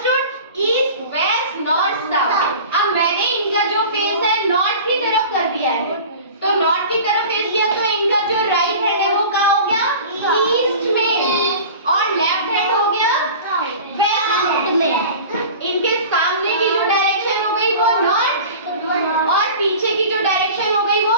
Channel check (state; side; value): inverted; both; correlation -0.38